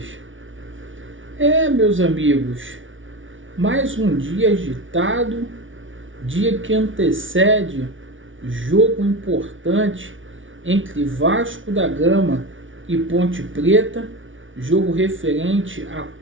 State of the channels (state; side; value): late; left; 0.57 ms